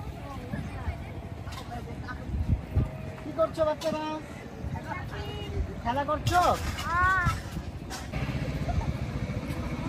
কি করছো বাচ্চারা? খেলা করছো?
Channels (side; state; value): both; identical; correlation 1.00